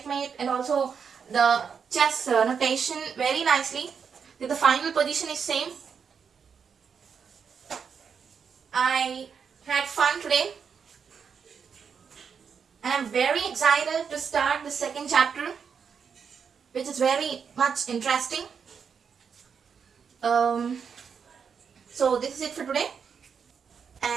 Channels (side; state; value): left; quieter; 6.5 dB